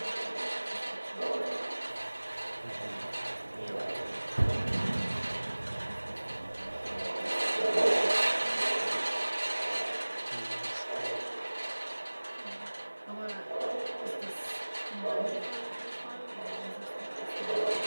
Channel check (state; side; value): inverted; both; correlation -1.00